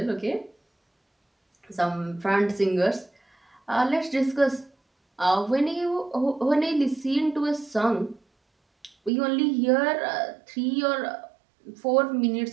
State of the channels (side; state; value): left; drops out; at 9.1 s